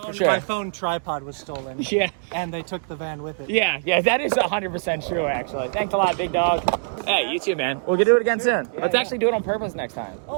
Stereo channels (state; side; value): silent; left; digital silence